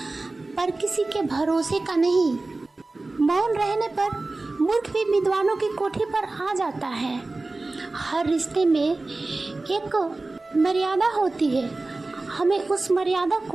पर किसी के भरोसे का नहीं। मौन रहने पर मूर्ख भी विद्वानों की कोठी पर आ जाता है। हर रिश्ते में एक मर्यादा होती है, हमें उस मर्यादा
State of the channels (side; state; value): left; quieter; 3.2 dB